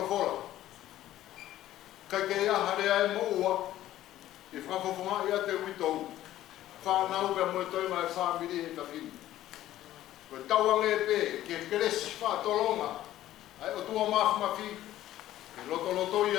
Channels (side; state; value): right; quieter; 13.7 dB